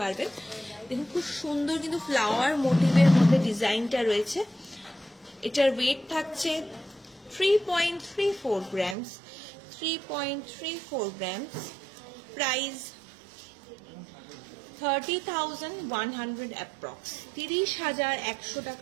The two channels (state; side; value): drops out; left; at 9.0 s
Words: দেখুন খুব সুন্দর কিন্তু ফ্লাওয়ার মোটিভের মধ্যে ডিজাইনটা রয়েছে। এটার ওয়েট থাকছে 3.34 গ্রামস, 3.34 গ্রামস। প্রাইস 30,100 অ্যাপ্রক্স, 30,100